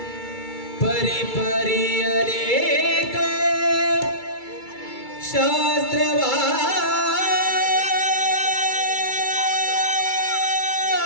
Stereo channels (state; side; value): late; right; 2.3 ms